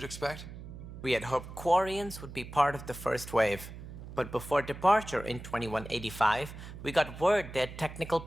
expect? We had hoped Quarians would be part of the first wave, but before departure in 2185, we got word they had technical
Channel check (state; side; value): noise; right; hum, 12 dB below the sound